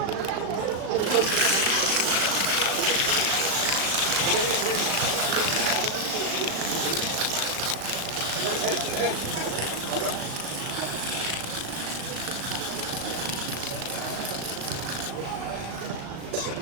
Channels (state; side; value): late; left; 36 ms